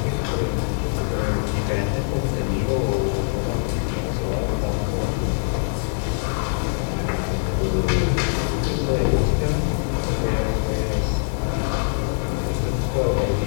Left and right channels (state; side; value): silent; right; digital silence